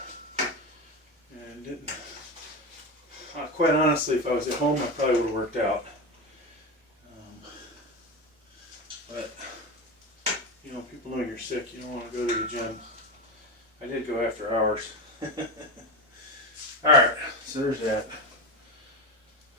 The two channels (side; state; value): both; normal; correlation 0.18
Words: and didn't, quite honestly, if I was at home I probably would have worked out. But, you know, people know you're sick, you don't want to go to the gym. I did go after hours. Alright, so there's that.